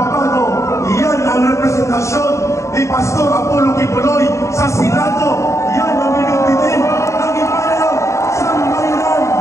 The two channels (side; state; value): right; late; 0.14 ms